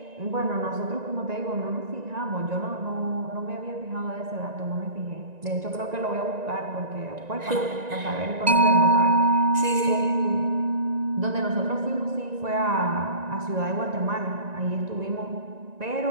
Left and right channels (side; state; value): left; late; 1.9 ms